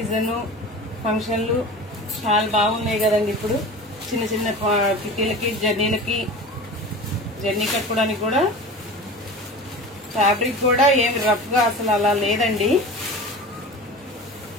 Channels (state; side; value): normal; both; correlation 0.34